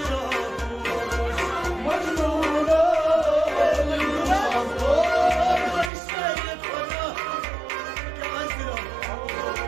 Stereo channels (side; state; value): left; drops out; at 5.9 s